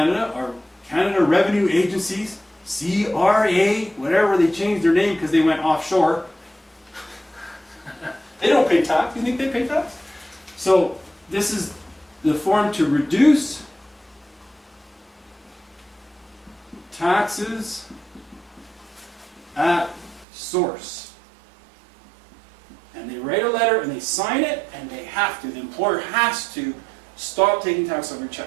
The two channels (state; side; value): drops out; left; at 20.2 s